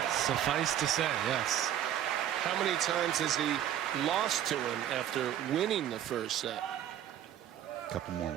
Suffice to say, yes. How many times has he lost to him after winning the first set? A couple more.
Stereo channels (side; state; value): left; quieter; 10.9 dB